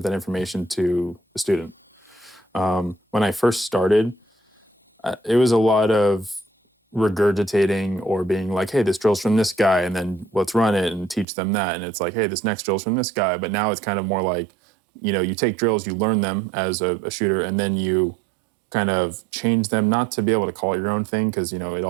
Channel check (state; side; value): drops out; left; at 11.2 s